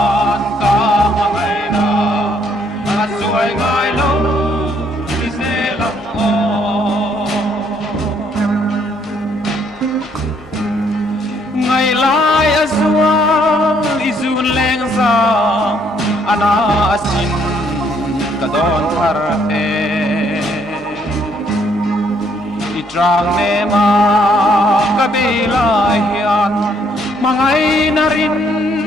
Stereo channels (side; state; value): both; normal; correlation 0.68